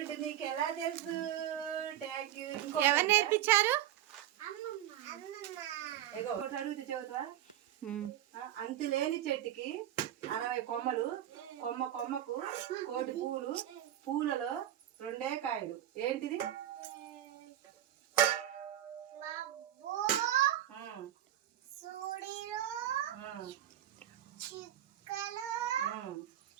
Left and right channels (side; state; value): left; quieter; 12.2 dB